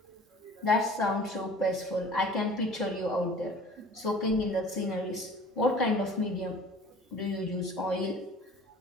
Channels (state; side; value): normal; both; correlation 0.46